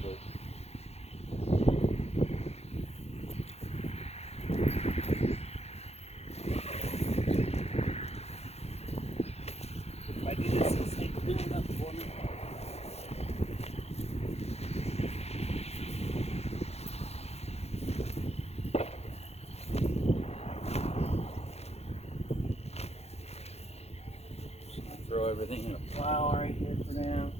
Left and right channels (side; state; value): right; late; 0.31 ms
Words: first. If I do this, it'll stay cleaned up for me. Throw everything in a pile right here for now.